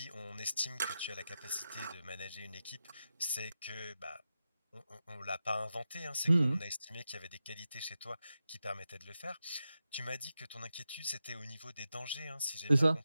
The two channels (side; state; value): both; inverted; correlation -0.90